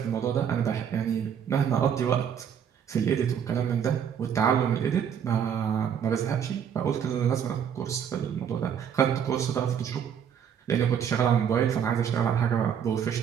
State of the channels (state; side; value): quieter; left; 8.2 dB